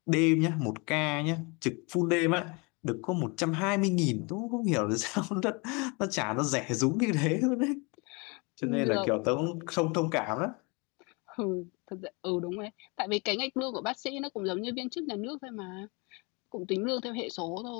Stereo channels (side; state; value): right; quieter; 29.9 dB